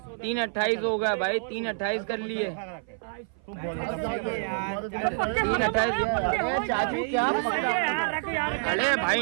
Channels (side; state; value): left; silent; 55 dB below the other